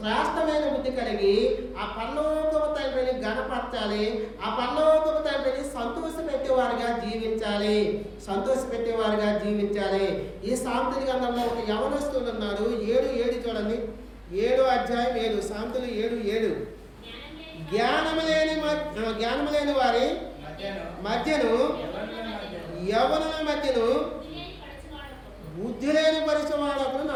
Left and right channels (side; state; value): both; identical; correlation 1.00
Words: బుద్ధి కలిగి ఆ పరలోకపు తండ్రిని గణపరచాలి. ఆ పరలోకపు తండ్రిని సంతోషపెట్టేవారుగా జీవించాలి. ఈ సామెతల గ్రంథంలో ఒక యవనస్తుడు ఉన్నారు. 7:7 చూడండి. 7వ అధ్యాయం 7. సామెతలు 7:7. జ్ఞానము లేని వారి మధ్యను, యవనుల మధ్యను బుద్ధి లేని పరిచయవాడు